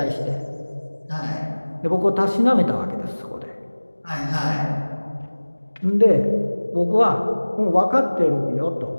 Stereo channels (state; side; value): inverted; both; correlation -1.00